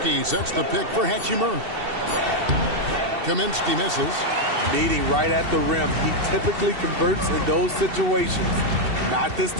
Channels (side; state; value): left; late; 2.7 ms